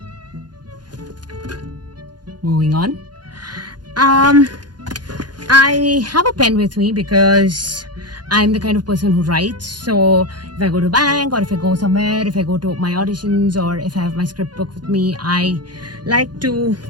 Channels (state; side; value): late; left; 0.70 ms